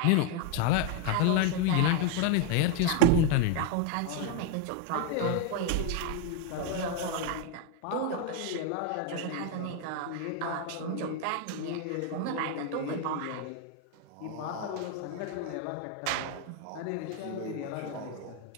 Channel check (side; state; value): both; different; correlation 0.01